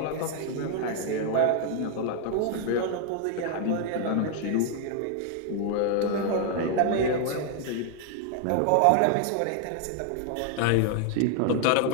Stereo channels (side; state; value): both; different; correlation 0.00